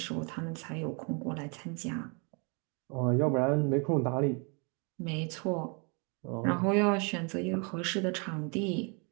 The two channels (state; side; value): quieter; left; 34.6 dB